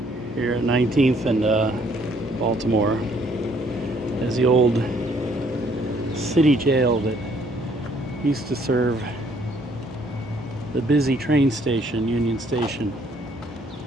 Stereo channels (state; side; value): normal; both; correlation 0.65